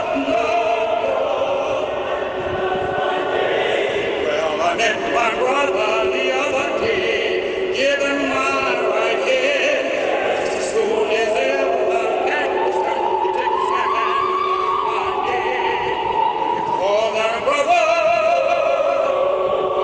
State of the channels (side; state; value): both; identical; correlation 1.00